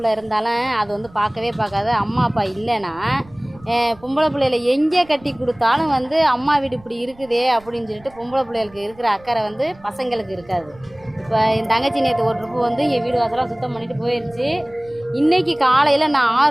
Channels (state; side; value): noise; right; rumble, 25 dB below the sound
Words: இருந்தாலும் அது வந்து பார்க்காது. அம்மா அப்பா இல்லைன்னா பொம்பளை பிள்ளைகளை எங்கே கட்டி கொடுத்தாலும் வந்து அம்மா வீடு இப்படி இருக்குதே அப்படின்னு சொல்லிட்டு பொம்பளை பிள்ளைகளுக்கு இருக்கிற அக்கறை வந்து பசங்களுக்கு இருக்காது. இப்போ என் தங்கச்சி நேற்று ஒரு ட்ரிப்பு வந்து என் வீடு வாசலாம் சுத்தம் பண்ணிட்டு போயிடுச்சு. இன்றைக்கி காலையில் நான்